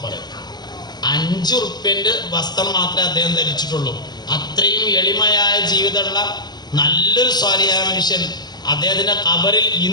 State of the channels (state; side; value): late; right; 0.20 ms